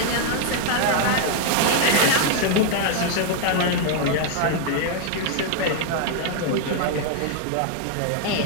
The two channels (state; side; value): different; both; correlation 0.00